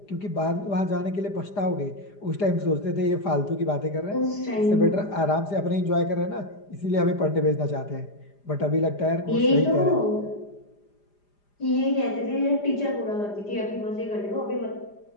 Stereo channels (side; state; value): right; late; 5.0 ms